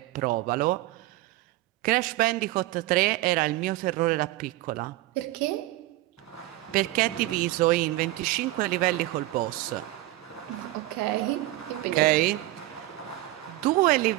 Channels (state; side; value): quieter; left; 17.4 dB